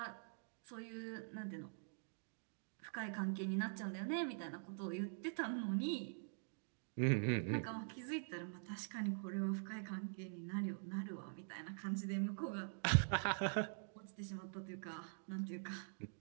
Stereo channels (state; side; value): silent; left; digital silence